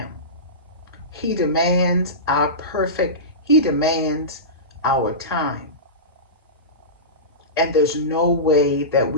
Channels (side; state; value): both; normal; correlation -0.20